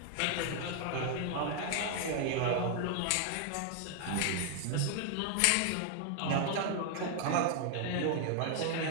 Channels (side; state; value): both; different; correlation 0.00